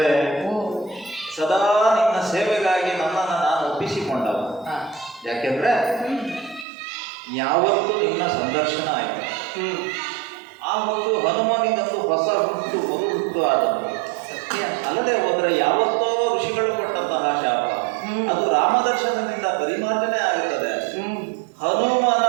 ಓ, ಸದಾ ನಿನ್ನ ಸೇವೆಗಾಗಿ ನನ್ನನ್ನು ನಾನು ಒಪ್ಪಿಸಿಕೊಂಡವ. ಯಾಕೆಂದ್ರೆ ಯಾವತ್ತೂ ನಿನ್ನ ಸಂದರ್ಶನ ಆಯಿತು, ಆವತ್ತು ಹನುಮನಿಗಂತೂ ಹೊಸ ಹುಟ್ಟು ಮರು ಹುಟ್ಟು ಆದದ್ದು ಸತ್ಯ. ಅಲ್ಲದೆ ಹೋದರೆ ಯಾವತ್ತೋ ಋಷಿಗಳು ಕೊಟ್ಟಂತಹ ಶಾಪ ಅದು ರಾಮದರ್ಶನದಿಂದ ಪರಿಮಾರ್ಜನೆ ಆಗುತ್ತದೆ. ಹನುಮನ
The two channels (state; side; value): drops out; left; at 6.7 s